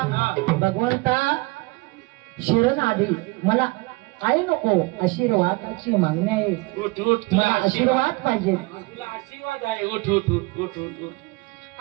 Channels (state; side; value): quieter; left; 24.3 dB